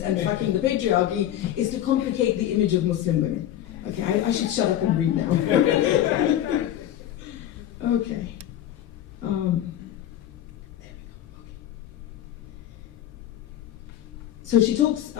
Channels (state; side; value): quieter; right; 11.9 dB